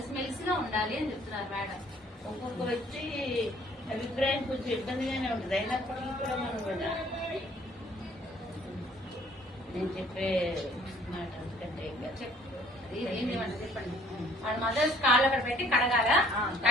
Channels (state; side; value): normal; both; correlation 0.58